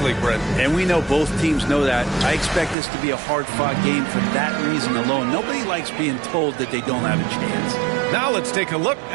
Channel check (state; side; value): drops out; left; at 2.8 s